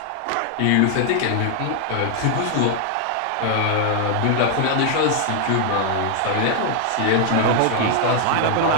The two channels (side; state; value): both; different; correlation 0.00